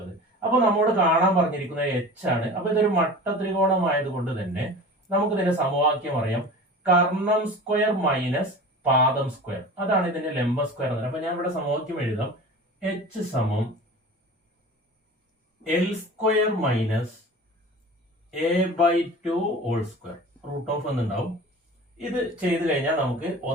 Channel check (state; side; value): normal; both; correlation 0.37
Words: അപ്പൊ നമ്മോട് കാണാൻ പറഞ്ഞിരിക്കുന്നത് എച്ച് ആണ്. അപ്പൊ ഇതൊരു മട്ടത്രികോണമായതുകൊണ്ട് തന്നെ നമുക്ക് ഇതിന്റെ സമവാക്യം അറിയാം. കർണം സ്ക്വയർ മൈനസ് പാദം സ്ക്വയർ, അതാണ് ഇതിന്റെ ലംബ സ്ക്വയർ. അപ്പൊ ഞാൻ ഇവിടെ സമവാക്യം എഴുതാം. എച്ച് സമം L square minus a/2 whole square, root of എന്നുണ്ടാവും. ഇത് ചെയ്തു കഴിഞ്ഞാൽ നമുക്ക്